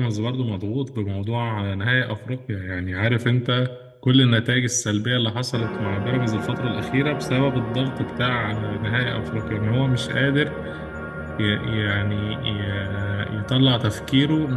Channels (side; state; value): both; identical; correlation 1.00